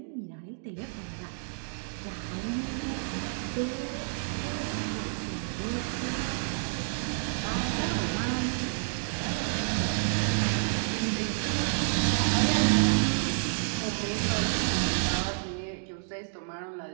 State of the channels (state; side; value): silent; left; digital silence